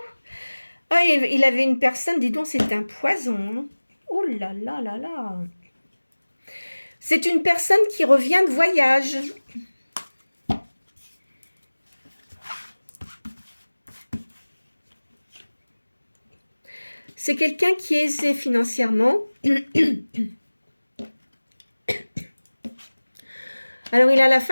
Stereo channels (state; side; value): inverted; both; correlation -1.00